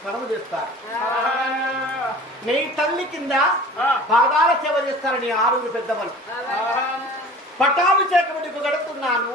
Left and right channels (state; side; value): normal; both; correlation 0.42